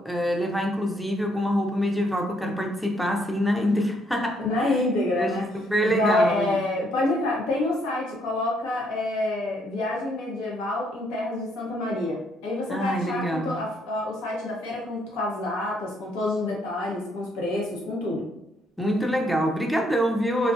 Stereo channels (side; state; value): both; normal; correlation 0.71